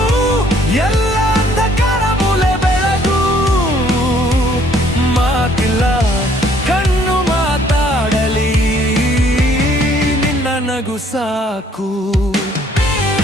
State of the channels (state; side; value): normal; both; correlation 0.62